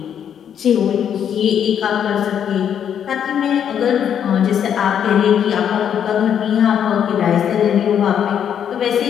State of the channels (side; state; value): right; quieter; 8.8 dB